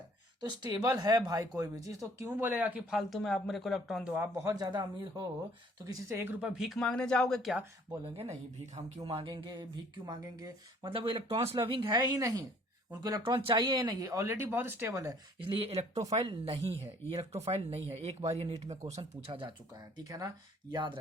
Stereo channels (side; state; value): both; normal; correlation 0.58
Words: तो स्टेबल है भाई कोई भी चीज, तो क्यों बोलेगा कि फालतू में आप मेरे को इलेक्ट्रॉन दो। आप बहुत ज्यादा अमीर हो तो किसी से 1 रुपया भीख मांगने जाओगे क्या? बोलेंगे नहीं, भीख हम क्यों मांगेंगे, भीख क्यों मांगेंगे, मतलब वो इलेक्ट्रॉन्स लविंग है ही नहीं, उनको इलेक्ट्रॉन चाहिए ही नहीं, ऑलरेडी बहुत स्टेबल है, इसलिए इलेक्ट्रोफाइल नहीं है, ये इलेक्ट्रोफाइल नहीं है। एक बार ये नीट में क्वेश्चन पूछा जा चुका है, ठीक है ना, याद